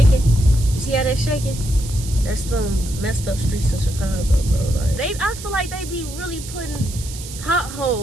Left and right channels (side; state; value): right; noise; hiss, 13 dB below the sound